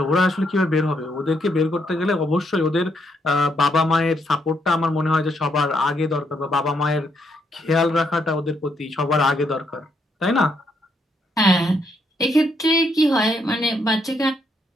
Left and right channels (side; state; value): both; normal; correlation 0.75